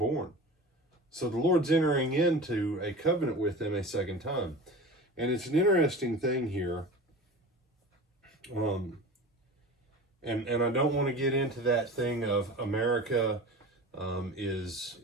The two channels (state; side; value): normal; both; correlation 0.34